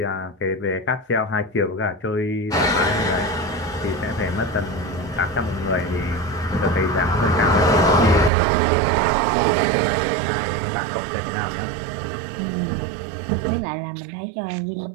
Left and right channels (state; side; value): drops out; left; at 8.3 s